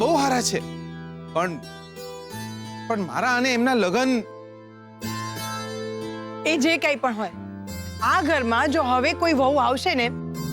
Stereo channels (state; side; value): identical; both; correlation 1.00